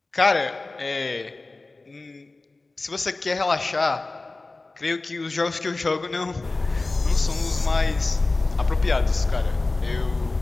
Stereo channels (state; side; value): quieter; right; 3.3 dB